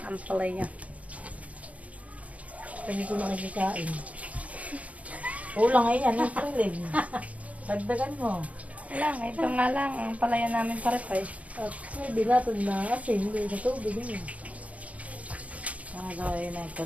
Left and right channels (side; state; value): left; late; 0.068 ms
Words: ampalaya. Hindi ko nakikikain. Kulang ay yan, ang tulig. Dagdagan mo. Lang, ito nga lang. Ang ampalaya namin parepay. At hindi natin na kasi hindi sa tubig yun. Gawin na yung